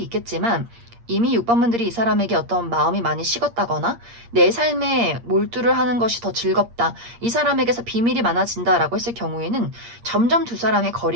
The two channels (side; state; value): left; late; 8.6 ms